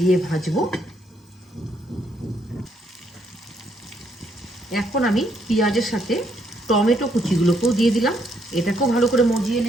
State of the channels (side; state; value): both; normal; correlation 0.73